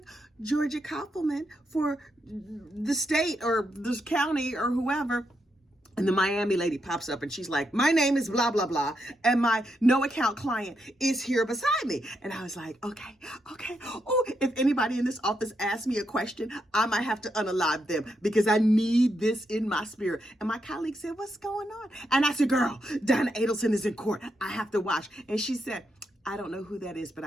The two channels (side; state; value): both; normal; correlation 0.82